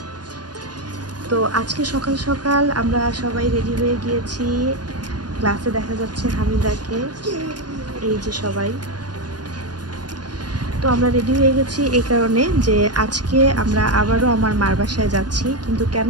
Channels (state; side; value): late; left; 0.69 ms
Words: তো আজকে সকাল সকাল আমরা সবাই রেডি হয়ে গিয়েছি। ক্লাসে দেখা যাচ্ছে হামিদাকে, এই যে সবাই। তো আমরা রেডি হয়ে গেছি এই কারণে যে আজকে আমরা আবারও আমার মার বাসায় যাচ্ছি। কিন্তু কেন